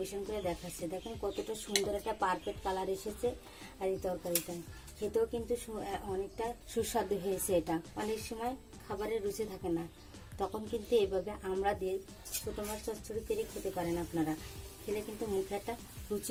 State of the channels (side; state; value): both; identical; correlation 1.00